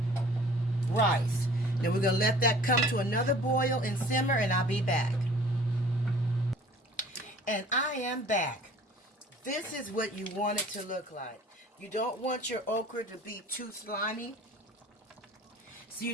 rice. Then we're gonna let that come to another boil and simmer, and I'll be back. And I am back. This is what you want it to look like. You don't want your okra to be too slimy, so you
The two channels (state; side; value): normal; both; correlation 0.49